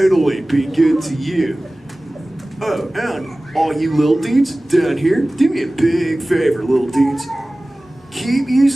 be good to you. Oh, and all you little dudes down here, do me a big favor, little dudes. Keep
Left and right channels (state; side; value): normal; both; correlation 0.98